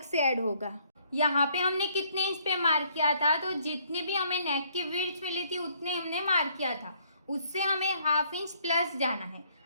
से ऐड होगा। यहाँ पे हमने कितने इंच पे मार्क किया था, तो जितनी भी हमें नेक की विड्थ मिली थी उतने हमने मार्क किया था, उससे हमें 1/2 इंच प्लस जाना है।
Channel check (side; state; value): both; inverted; correlation -0.65